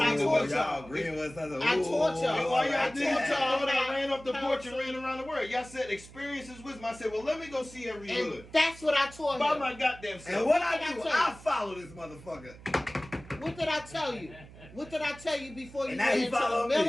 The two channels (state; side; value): noise; right; hum, 19 dB below the sound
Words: Experience taught is y'all. Y'all agreeing with us. I taught y'all. And why y'all I did taught y'all that? I about ran up the porch and counsel. ran around the world. Y'all said experience is wisdom. I said, well, let me go see every And hood. that's what I taught By him. my goddamn self. And what What I did I do, tell I you? follow this motherfucker. What did I tell you? What did I tell you before you And now went he into the follow me.